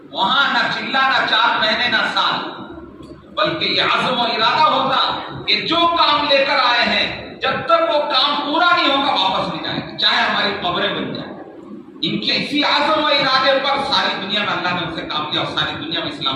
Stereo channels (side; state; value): both; identical; correlation 1.00